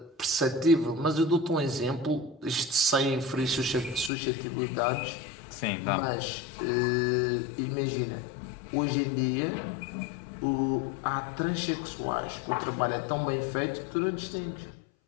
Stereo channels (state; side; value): drops out; right; at 4.1 s